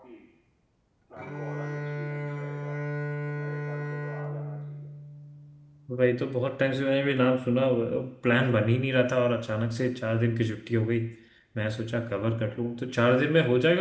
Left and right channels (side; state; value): both; identical; correlation 1.00